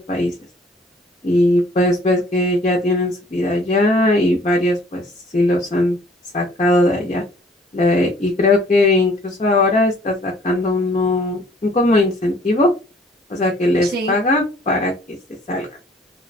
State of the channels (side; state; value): both; normal; correlation 0.57